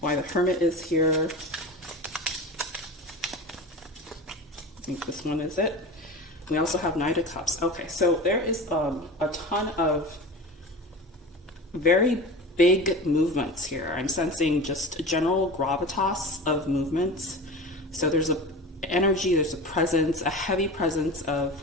the Hermit is here. I think this one is it. We also have Knight of Cups. Okay, so there is a ton of very big movements here. I'm sensing just a general gravitas of movements. So there's a energy, there's a presence, a heavy presence of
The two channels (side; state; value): both; normal; correlation 0.31